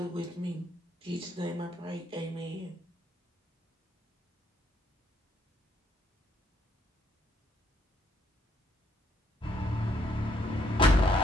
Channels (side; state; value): both; normal; correlation 0.70